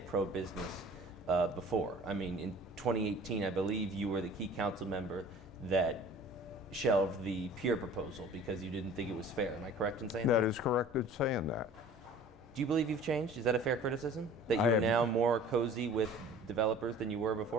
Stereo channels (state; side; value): normal; both; correlation 0.46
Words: pro-business before. I mean, in 2018, I believe you were the key council member that shelved the peer proposal because you didn't think it was fair. Am I correct in saying that? That is correct in saying that. Do you believe you've changed? Is that a fair criticism? That you're now more cozy with developers than you were